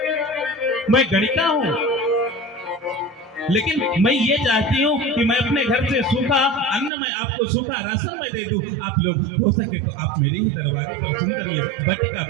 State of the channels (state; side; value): drops out; left; at 6.9 s